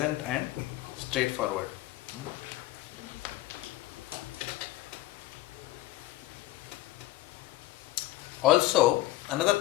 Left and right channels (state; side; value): quieter; right; 16.8 dB